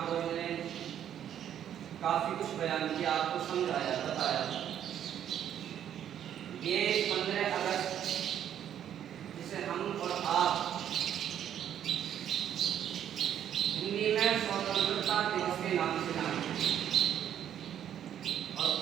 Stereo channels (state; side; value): quieter; left; 10.0 dB